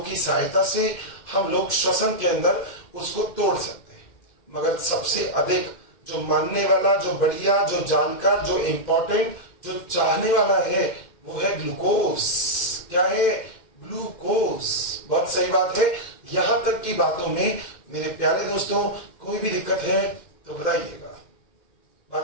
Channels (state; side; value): late; right; 2.1 ms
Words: की सहायता से हम लोग श्वसन के अंदर उसको तोड़ सकते हैं। मगर सबसे अधिक जो मानने वाला, जो बढ़िया, जो जानकार, जो इंपॉर्टेंट, जो चाहने वाला है, वो है ग्लूकोज। क्या है? ग्लूकोज। बहुत सही बात है। यहां तक की बातों में मेरे प्यारे दोस्तों कोई भी दिक्कत है तो बताइएगा।